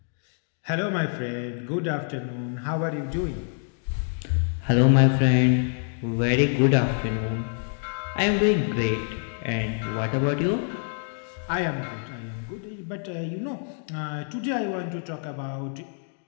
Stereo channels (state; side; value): silent; right; 61 dB below the other